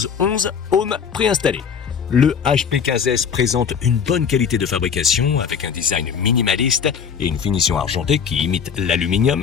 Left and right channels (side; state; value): right; quieter; 6.9 dB